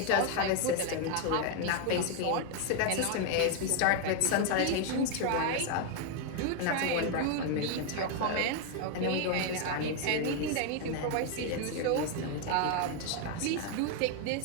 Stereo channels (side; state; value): both; different; correlation 0.01